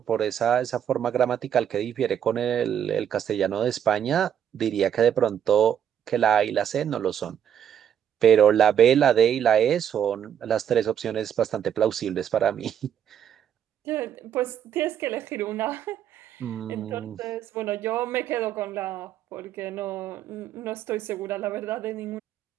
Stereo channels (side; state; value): left; quieter; 9.3 dB